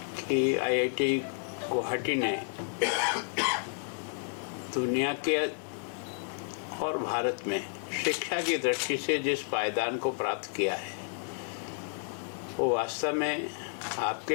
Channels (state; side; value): silent; right; 57 dB below the other